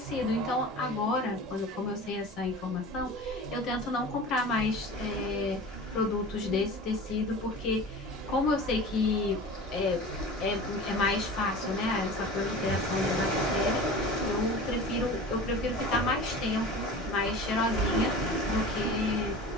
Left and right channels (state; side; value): normal; both; correlation 0.36